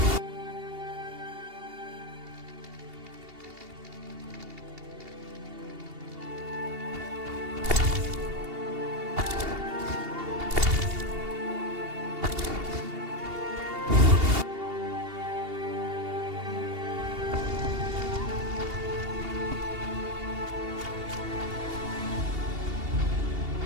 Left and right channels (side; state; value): left; late; 2.8 ms